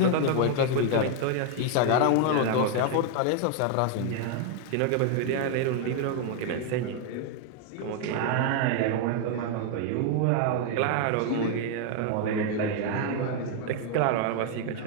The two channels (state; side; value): different; both; correlation 0.00